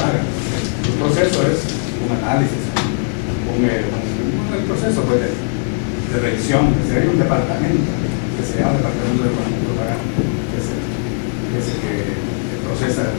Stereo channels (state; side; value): silent; right; 58 dB below the other